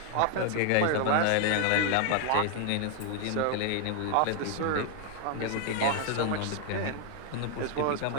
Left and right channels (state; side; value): different; both; correlation 0.00